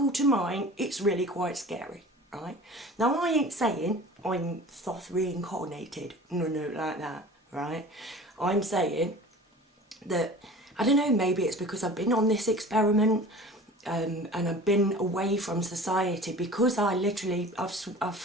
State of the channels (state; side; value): normal; both; correlation 0.41